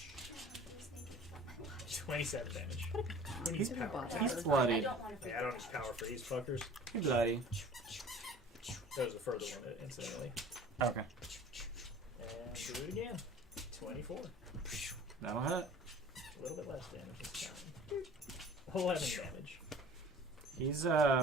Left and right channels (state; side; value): normal; both; correlation 0.45